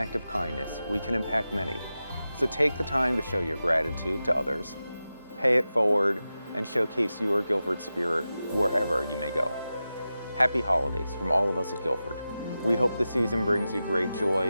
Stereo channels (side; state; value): both; inverted; correlation -0.93